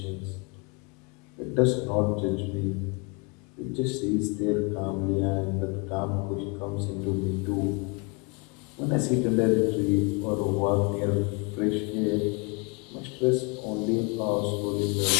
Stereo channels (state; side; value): quieter; right; 31.8 dB